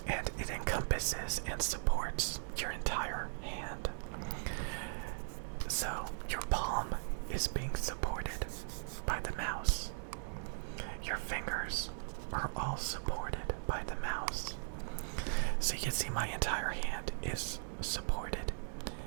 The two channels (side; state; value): left; silent; digital silence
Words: and it encompasses and supports your entire hand. So your palm is being supported by the mouse. Your fingers are all supported by the mouse. So you can see my entire hand is supported